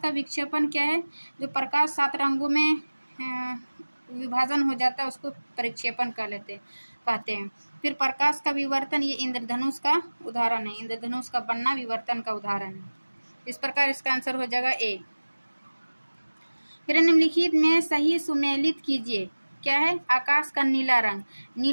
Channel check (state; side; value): inverted; both; correlation -1.00